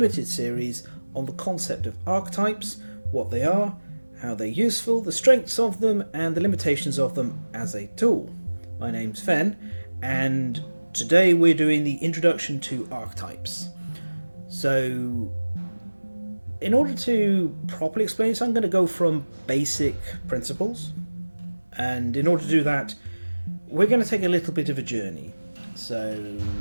series on the concept of archetypes, what they are, how they're useful, the strengths of them and the limitations of them as a tool. My name's Fen and today we're doing the introduction to archetypes. So in order to properly explain this, I'm going to go from basic principles, and in order to do that we're going to take a little bit of a journey. So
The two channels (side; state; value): both; inverted; correlation -1.00